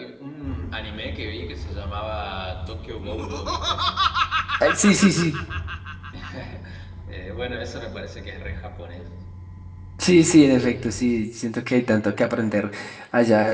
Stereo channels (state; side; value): identical; both; correlation 1.00